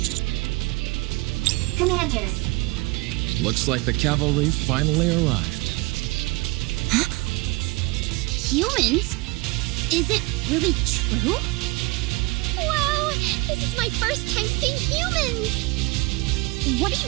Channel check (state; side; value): quieter; left; 24.9 dB